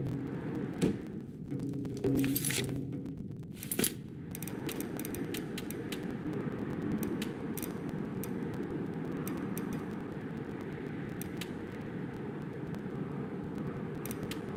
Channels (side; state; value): both; identical; correlation 1.00